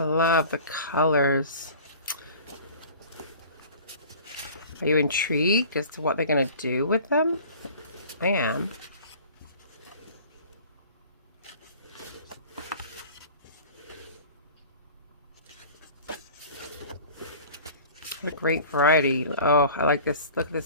love the colors. Are you intrigued as to what they're going to do with them? I am. What a great variety. Oh, I like this. Look at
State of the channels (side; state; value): both; inverted; correlation -0.44